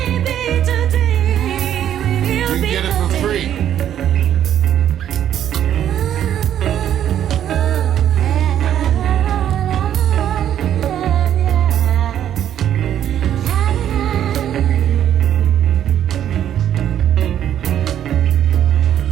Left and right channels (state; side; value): quieter; left; 10.5 dB